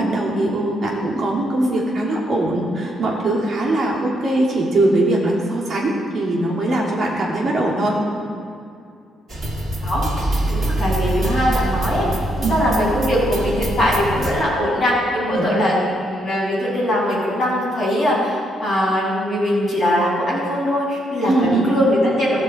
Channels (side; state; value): both; normal; correlation 0.76